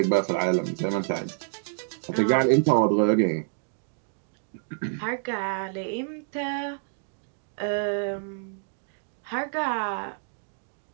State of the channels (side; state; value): left; silent; digital silence